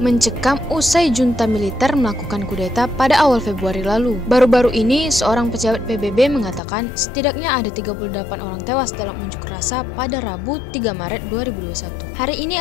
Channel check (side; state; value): right; drops out; at 6.6 s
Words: mencekam usai junta militer melakukan kudeta pada awal Februari lalu. Baru-baru ini, seorang pejabat PBB mengatakan setidaknya ada 38 orang tewas dalam unjuk rasa pada Rabu 3 Maret 2021. Hari ini